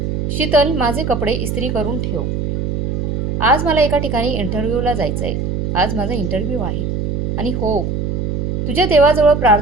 शीतल, माझे कपडे इस्त्री करून ठेव. आज मला एका ठिकाणी इंटरव्ह्यूला जायचं आहे. आज माझा इंटरव्ह्यू आहे. आणि हो, तुझ्या देवाजवळ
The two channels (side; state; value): right; noise; hum, 1 dB below the sound